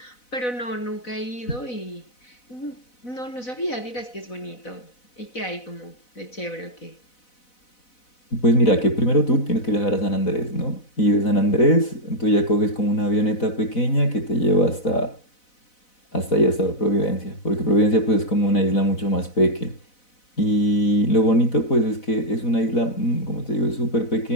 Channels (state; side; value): late; right; 4.0 ms